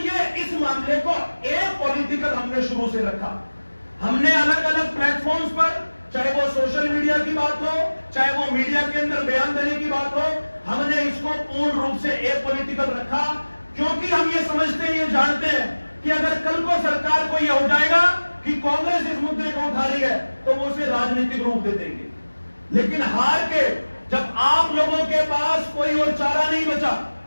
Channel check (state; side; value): inverted; both; correlation -1.00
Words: इस मामले को पॉलिटिकल हमने शुरू से रखा। हमने अलग अलग प्लेटफॉर्म्स पर, चाहे वो सोशल मीडिया की बात हो, चाहे वो मीडिया के अंदर बयान देने की बात हो, हमने इसको पूर्ण रूप से पॉलिटिकल रखा, क्योंकि हम ये समझते हैं, ये जानते हैं कि अगर कल को सरकार को यह हो जाएगा कि कांग्रेस इस मुद्दे को उठा रही है, तो वो उसे राजनीतिक रूप दे देंगे। लेकिन हार के जब आप लोगों के पास कोई और चारा नहीं बचा,